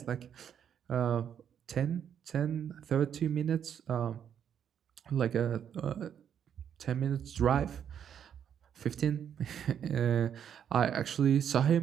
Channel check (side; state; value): left; quieter; 8.7 dB